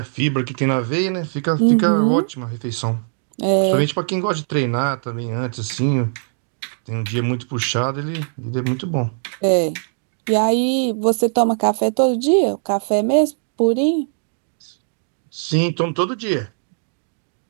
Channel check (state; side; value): silent; left; 65 dB below the other